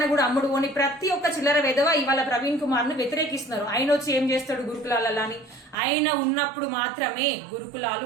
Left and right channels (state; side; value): drops out; left; at 5.8 s